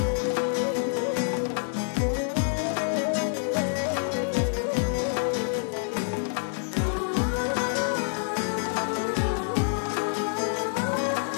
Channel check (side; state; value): right; silent; 60 dB below the other